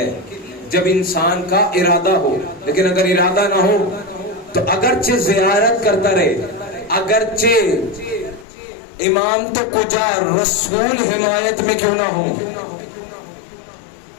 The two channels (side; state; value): right; drops out; at 8.5 s